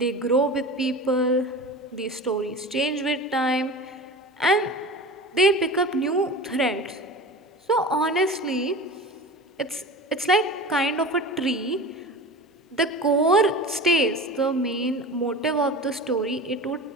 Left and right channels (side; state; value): both; normal; correlation 0.32